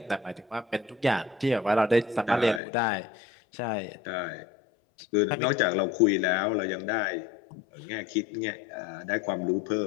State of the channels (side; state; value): right; drops out; at 2.6 s